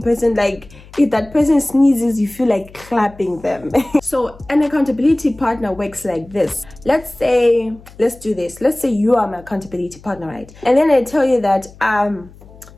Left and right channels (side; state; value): left; noise; hum, 22 dB below the sound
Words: person, like if that person sneezes, you feel like clapping them. So an accountability partner works like this. Let's do this. Let's say you are my accountability partner, right? And then I tell you that